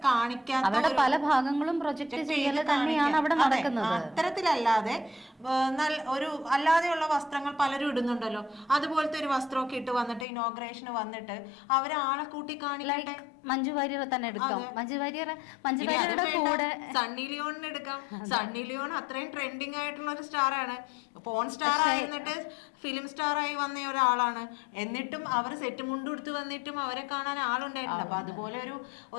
കാണിക്കാത്ത അവരുടെ പല ഭാഗങ്ങളും പ്രൊജക്ട് ചെയ്യൽ തന്നെയാണ് അവിടെ നടക്കുന്നത്. അത്തരത്തിലല്ലാതെ ഒരു അല്ലാതെയുള്ള വസ്ത്രങ്ങൾ പലരും ഇടുന്നുണ്ടല്ലോ, അതുപോലത്തെ ഒരു വസ്ത്രമൊക്കെ ഇട്ട് വന്നിട്ട് ഇനോഗ്രേഷന് വന്നിട്ട് അവരാളെ കൂട്ടി കാണിക്കട്ടെ. മഞ്ജു വാര്യർ തന്നെ എടുക്കാം, മഞ്ജു വാര്യരുടെ കൂടെ സണ്ണി ലിയോണിന് എടുക്കാം. സണ്ണി ലിയോൺ അത്രയും ട്രെൻഡിങ് ആയിട്ടുള്ള ഒരു സ്റ്റാറാണ്, പോൺ സ്റ്റാർ ആയിരുന്നിട്ട് ഫിലിം സ്റ്റാർ ആയി വന്ന ഒരാളാണ്. എന്നിട്ടും അവർ സെറ്റ് മുണ്ട് കൊടുത്ത് വന്നിട്ടും അവരെ കാണാൻ ആളുണ്ടായിട്ടുണ്ട്. അപ്പൊ അതുപോലെ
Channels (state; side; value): drops out; right; at 10.2 s